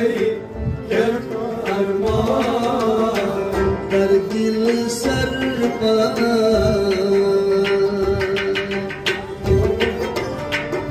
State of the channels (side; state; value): both; identical; correlation 1.00